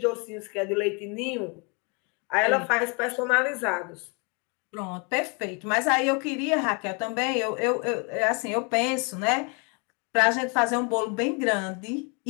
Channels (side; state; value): right; quieter; 33.4 dB